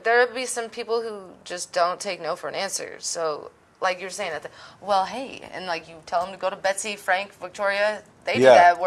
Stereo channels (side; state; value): both; identical; correlation 1.00